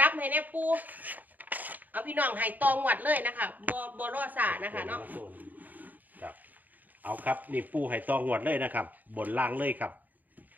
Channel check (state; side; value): late; left; 0.083 ms